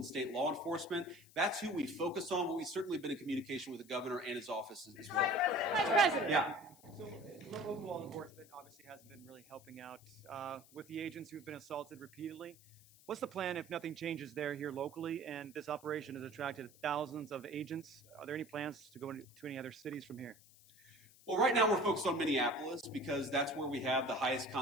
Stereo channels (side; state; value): left; noise; hiss, 24 dB below the sound